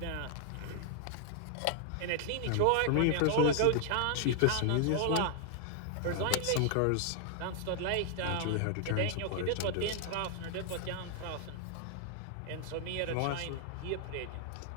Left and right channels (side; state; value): both; different; correlation 0.00